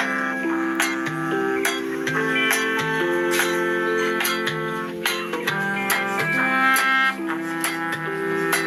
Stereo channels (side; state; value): both; identical; correlation 1.00